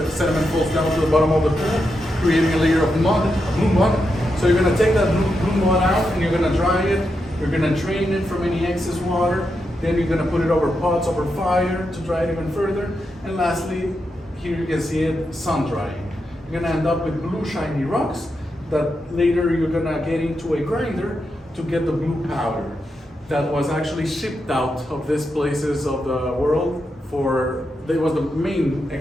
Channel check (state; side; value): normal; both; correlation 0.85